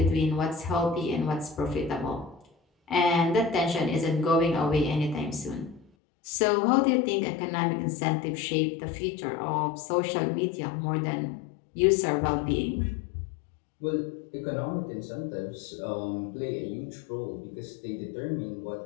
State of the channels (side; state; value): right; drops out; at 5.9 s